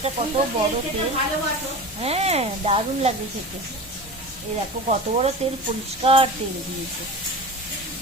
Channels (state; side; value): normal; both; correlation 0.32